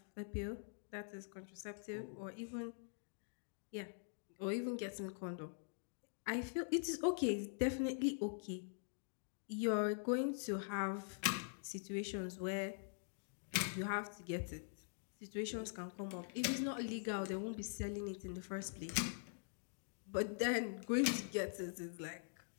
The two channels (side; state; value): right; silent; digital silence